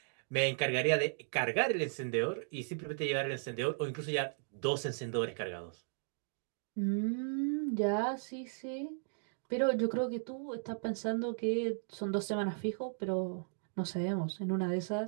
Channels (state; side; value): silent; left; digital silence